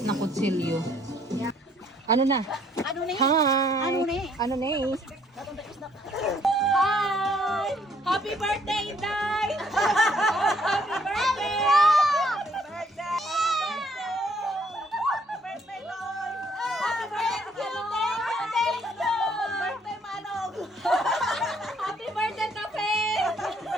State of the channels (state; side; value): normal; both; correlation 0.65